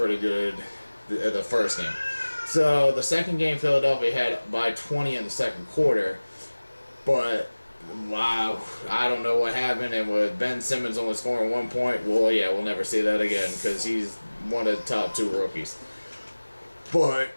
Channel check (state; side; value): inverted; both; correlation -1.00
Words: good the first game. So, the second game, Philadelphia had by 20 in the second quarter, but, wow, I don't know what happened, and with Ben Simmons only scoring 1 point, well, yeah, we'll never see that again, because he's one of the top 2 rookies. But,